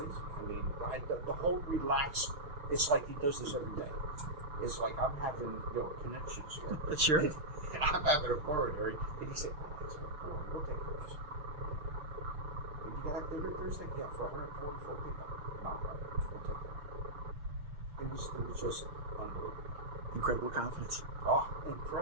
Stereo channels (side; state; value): left; late; 6.8 ms